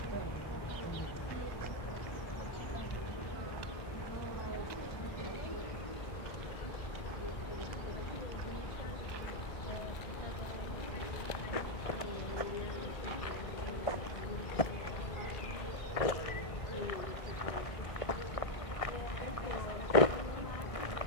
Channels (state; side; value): late; right; 1.6 ms